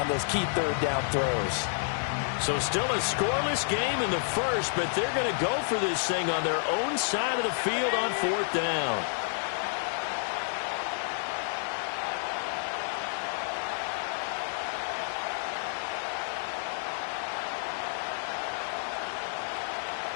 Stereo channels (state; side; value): silent; right; digital silence